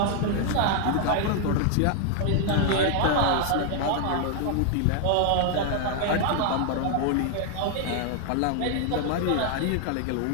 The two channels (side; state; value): both; different; correlation 0.00